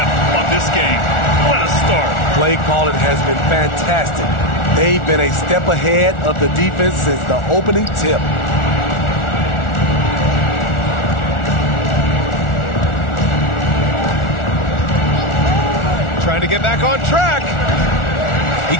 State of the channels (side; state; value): right; late; 1.4 ms